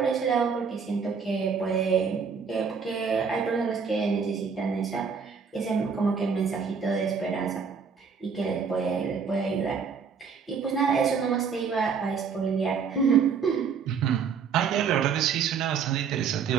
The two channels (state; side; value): quieter; left; 6.1 dB